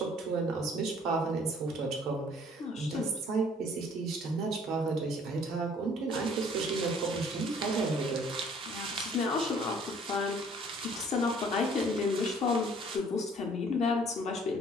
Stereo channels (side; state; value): both; normal; correlation 0.57